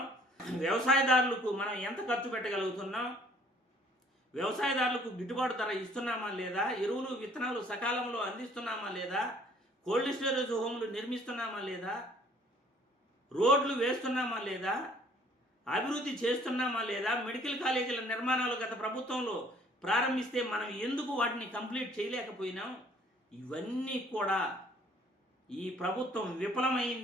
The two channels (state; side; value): normal; both; correlation 0.58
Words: వ్యవసాయదారులకు మనం ఎంత ఖర్చు పెట్టగలుగుతున్నాం, వ్యవసాయదారులకు గిట్టుబాటు ధర ఇస్తున్నామా లేదా, ఎరువులు విత్తనాలు సకాలంలో అందిస్తున్నామా లేదా, కోల్డ్ స్టోరేజ్ హోమ్లు నిర్మిస్తున్నామా లేదా, రోడ్లు వేస్తున్నామా లేదా, అభివృద్ధి చేస్తున్నామా లేదా, మెడికల్ కాలేజీల నిర్మాణాలు గత ప్రభుత్వంలో ప్రారంభిస్తే మనం ఎందుకు వాటిని కంప్లీట్ చేయలేకపోయినాం? ఇవన్నీ కూడా ఈ ప్రభుత్వం